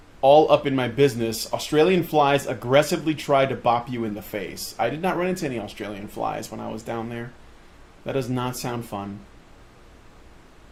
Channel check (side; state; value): both; identical; correlation 1.00